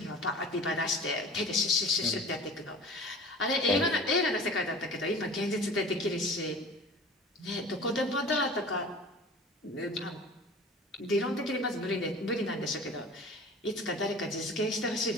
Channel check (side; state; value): both; normal; correlation 0.40